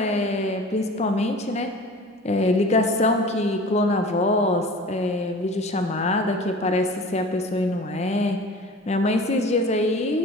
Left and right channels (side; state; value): both; normal; correlation 0.40